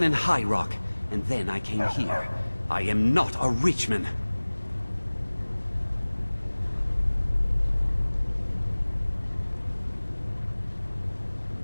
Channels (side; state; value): both; inverted; correlation -1.00